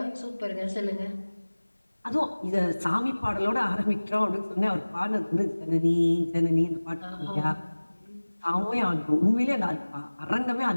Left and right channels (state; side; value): inverted; both; correlation -1.00